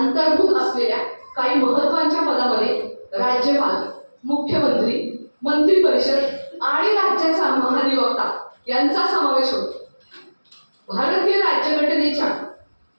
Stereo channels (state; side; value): inverted; both; correlation -1.00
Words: असलेल्या काही महत्त्वाच्या पदामध्ये राज्यपाल, मुख्यमंत्री, मंत्री परिषद आणि राज्याचा महाधिवक्ता यांचा समावेश होतो. भारतीय राज्यघटनेच्या